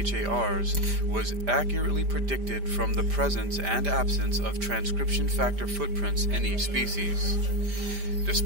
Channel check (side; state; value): left; late; 5.0 ms